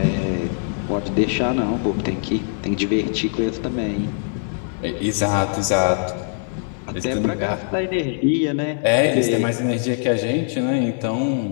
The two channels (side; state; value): right; silent; digital silence